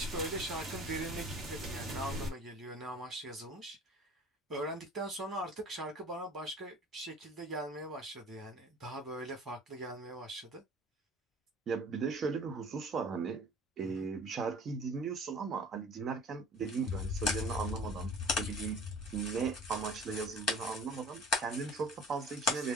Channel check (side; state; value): both; normal; correlation 0.46